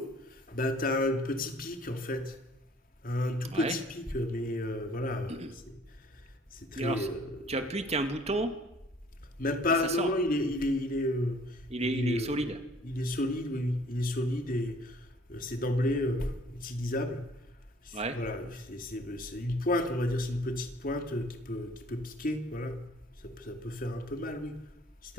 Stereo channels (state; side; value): normal; both; correlation 0.56